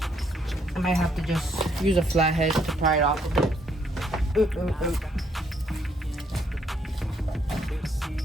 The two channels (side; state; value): both; normal; correlation 0.70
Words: I might have to just use a flathead to pry it off a bit.